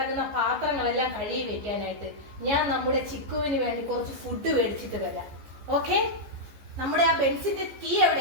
പാത്രങ്ങളെല്ലാം കഴുകി വെക്കാനായിട്ട്. ഞാൻ നമ്മുടെ ചിക്കുവിന് വേണ്ടി കുറച്ച് ഫുഡ് മേടിച്ചിട്ട് വരാം. ഓക്കെ? നമ്മുടെ ആ ബെൻസിന്റെ കീ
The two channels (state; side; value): late; left; 14 ms